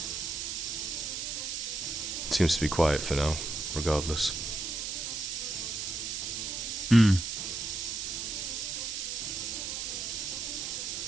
seems to be quiet for now, regardless. Hmm.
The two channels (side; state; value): right; noise; hiss, 3 dB below the sound